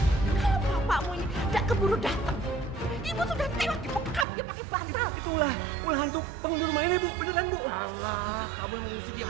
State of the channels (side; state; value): left; drops out; at 4.2 s